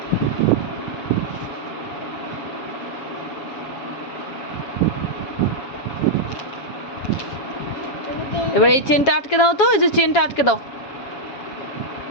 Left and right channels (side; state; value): right; late; 7.2 ms